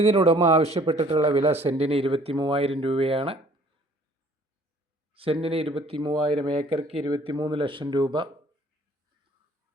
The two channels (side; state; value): both; normal; correlation 0.56